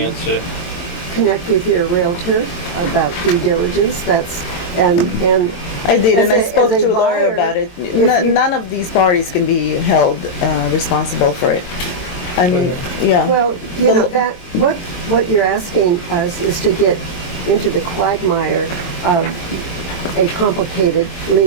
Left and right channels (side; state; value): right; late; 22 ms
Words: it. connect with your realtor about due diligence. And I did, as and I a- spoke as a to a lawyer buyer, about it. if you- None of these parties can be held responsible for it. I mean, yeah. Well, The- that what you're asking us is to get into the quagmire of a complicated